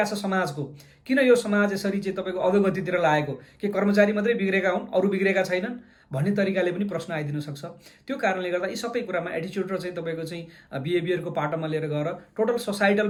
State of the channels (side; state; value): both; identical; correlation 1.00